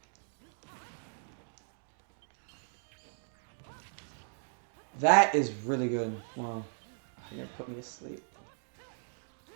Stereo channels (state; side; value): silent; left; digital silence